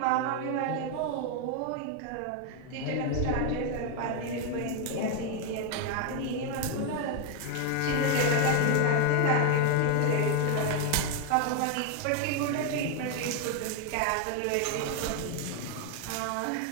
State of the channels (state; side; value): different; both; correlation 0.01